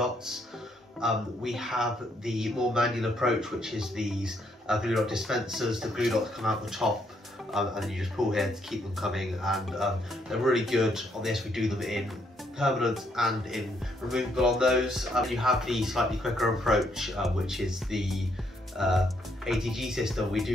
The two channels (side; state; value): both; normal; correlation 0.73